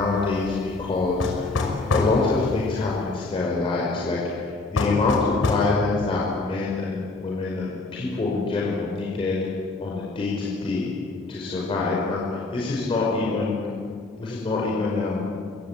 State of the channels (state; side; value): quieter; right; 3.2 dB